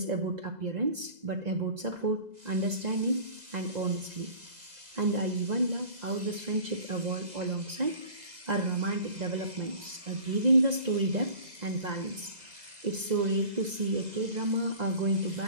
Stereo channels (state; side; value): late; left; 2.0 ms